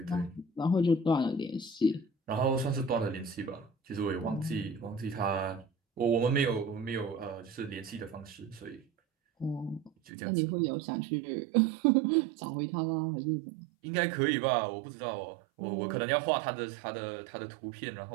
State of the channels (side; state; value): left; drops out; at 9.9 s